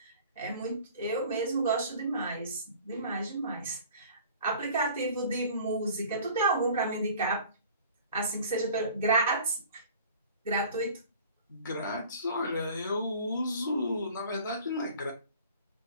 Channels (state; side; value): inverted; both; correlation -0.47